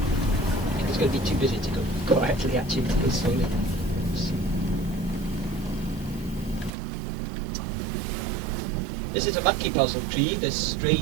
It's going to be too busy to go quietly, actually, to go slowly. This is a monkey puzzle tree, this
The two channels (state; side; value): drops out; left; at 6.7 s